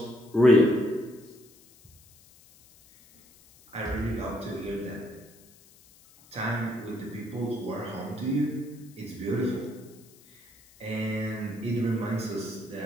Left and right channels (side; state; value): left; noise; hiss, 26 dB below the sound